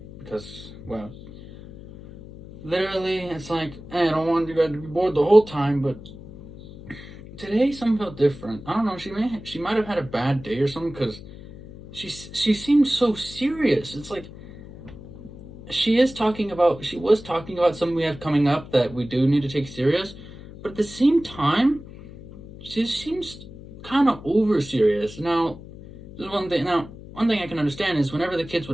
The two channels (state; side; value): noise; left; hum, 16 dB below the sound